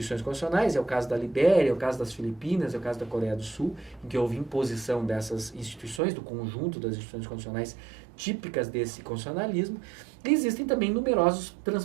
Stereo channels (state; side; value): drops out; left; at 6.0 s